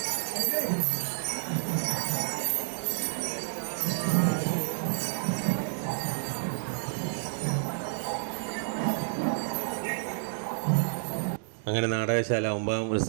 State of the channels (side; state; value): left; silent; digital silence